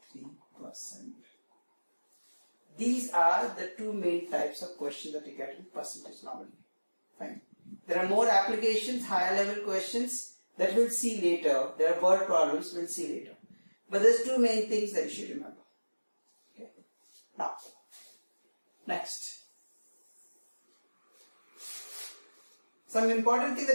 These are the two main types of questions that you get in percentage normally. Fine. There are more applications, higher level questions that we'll see later. There are word problems we'll see later. But there's two main things that you should remember. Okay. Now, next. Some important thing that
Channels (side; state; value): both; inverted; correlation -1.00